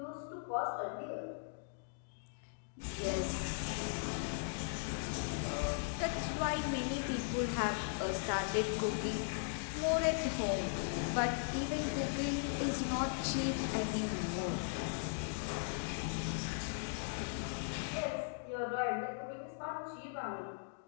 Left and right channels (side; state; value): right; silent; digital silence